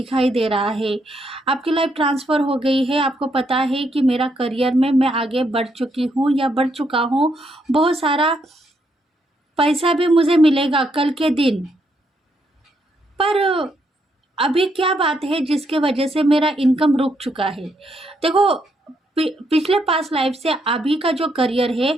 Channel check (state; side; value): normal; both; correlation 0.76